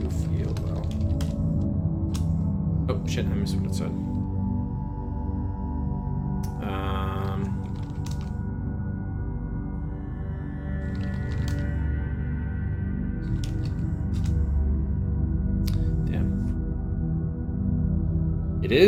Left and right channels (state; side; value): identical; both; correlation 1.00